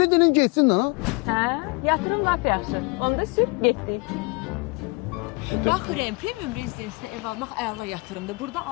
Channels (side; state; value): right; quieter; 28.4 dB